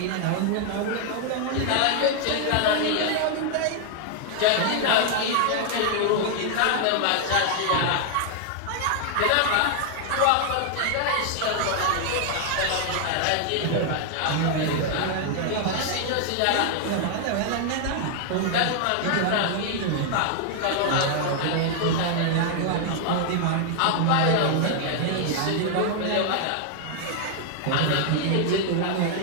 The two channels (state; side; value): different; both; correlation 0.00